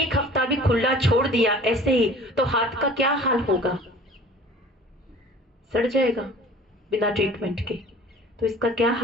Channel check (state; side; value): normal; both; correlation 0.46